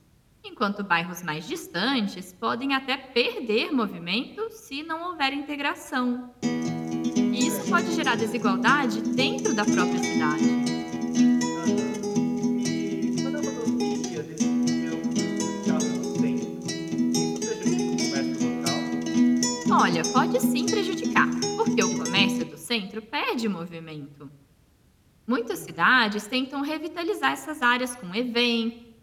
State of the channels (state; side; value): identical; both; correlation 1.00